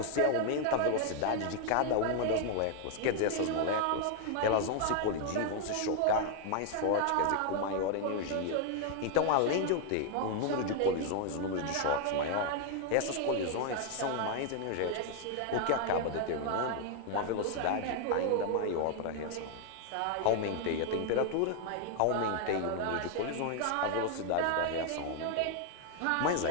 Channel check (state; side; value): different; both; correlation 0.00